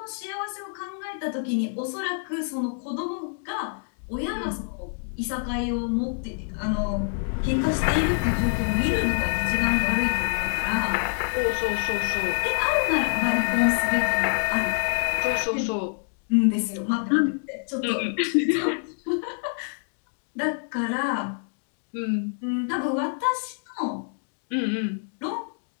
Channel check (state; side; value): silent; right; 57 dB below the other